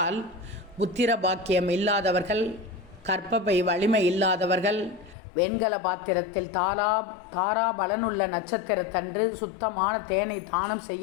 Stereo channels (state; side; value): drops out; right; at 5.2 s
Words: புத்திர பாக்கியம் இல்லாதவர்கள், கற்பப்பை வலிமை இல்லாதவர்கள் வெண்கல பாத்திரத்தில் தாரா பலனுள்ள நட்சத்திரத்தன்று சுத்தமான தேனை தானம்